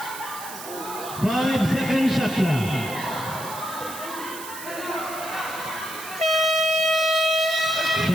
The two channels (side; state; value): right; noise; hiss, 12 dB below the sound